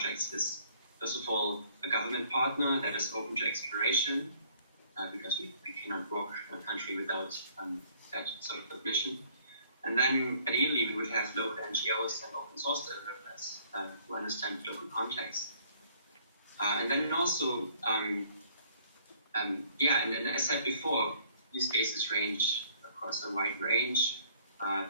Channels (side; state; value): both; inverted; correlation -0.59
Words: is, first of all, a government partner that is open to exploration, because we cannot work in a country without that sort of permission. And then ideally we would have local NGOs and open source developers who understand local context. And then also, and as I said before, use cases range across a wide range: